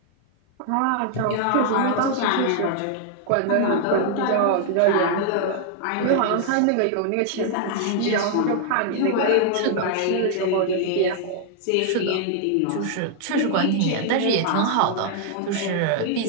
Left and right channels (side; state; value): both; different; correlation -0.01